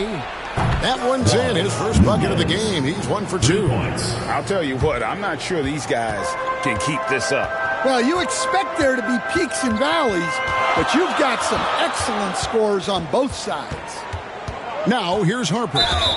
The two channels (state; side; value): identical; both; correlation 1.00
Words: That one's in. His first bucket of the game. He's 1 for 2. I'll tell you what, I'm not sure these guys can keep this up. Well, you expect there to be peaks and valleys, but you've got some excellent scores on both sides. Now, here's Harper.